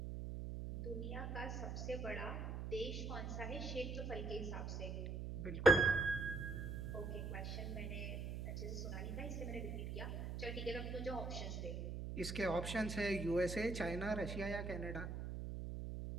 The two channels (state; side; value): noise; right; hum, 4 dB below the sound